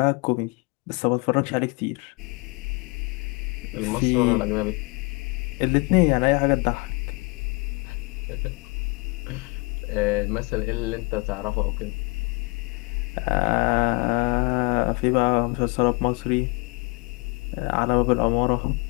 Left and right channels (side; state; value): right; quieter; 28.6 dB